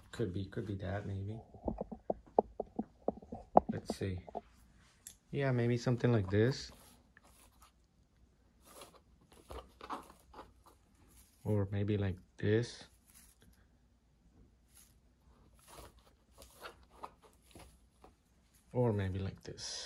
could be that maybe. Let's see. Yeah, maybe something like this. Or maybe like this. Or maybe like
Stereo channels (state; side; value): identical; both; correlation 1.00